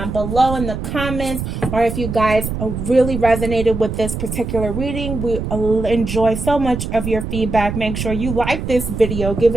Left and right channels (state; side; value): noise; right; rumble, 5 dB below the sound